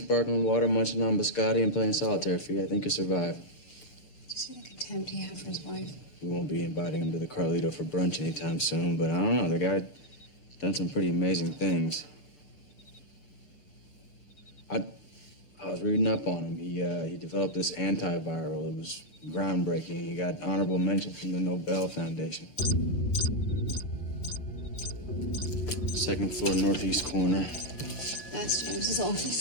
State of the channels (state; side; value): late; right; 6.8 ms